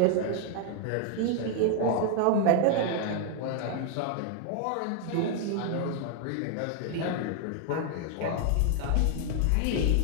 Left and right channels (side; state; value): both; different; correlation 0.00